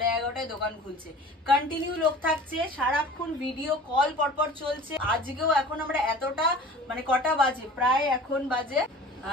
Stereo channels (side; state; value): both; normal; correlation 0.42